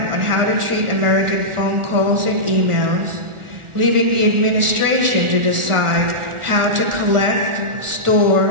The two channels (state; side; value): late; left; 1.4 ms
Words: on how to treat American phone calls and emails, leaving the administration to decide how to collect,